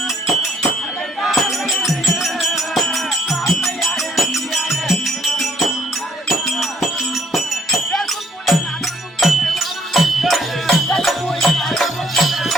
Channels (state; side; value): normal; both; correlation 0.65